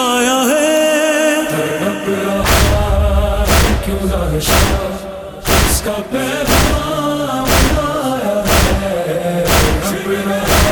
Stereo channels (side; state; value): both; identical; correlation 1.00